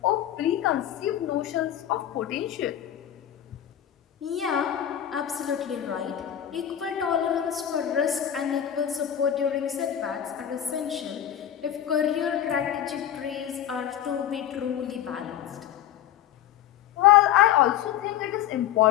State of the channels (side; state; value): right; quieter; 10.8 dB